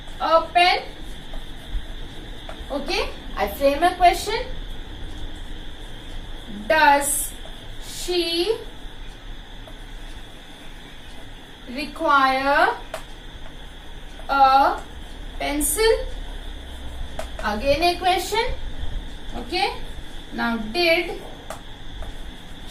a pen? Okay, I frame a question. Does she require a pencil? Again a question. Okay, now did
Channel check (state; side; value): identical; both; correlation 1.00